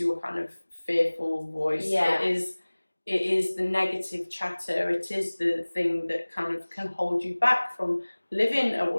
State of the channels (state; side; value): inverted; both; correlation -1.00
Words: kind of fearful voice. It is the negative chatter. It is the thing that kind of can hold you back from living a